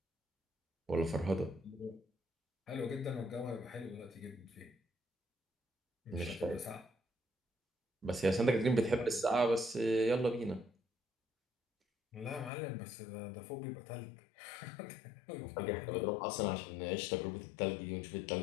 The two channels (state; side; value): drops out; right; at 12.5 s